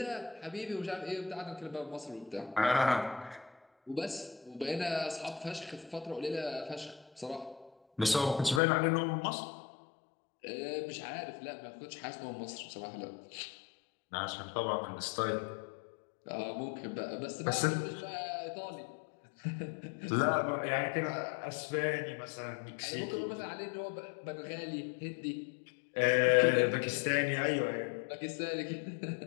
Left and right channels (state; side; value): drops out; right; at 8.6 s